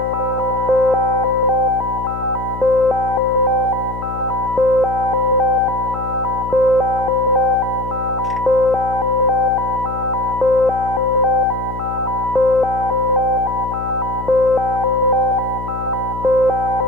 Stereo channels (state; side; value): noise; left; hum, 10 dB below the sound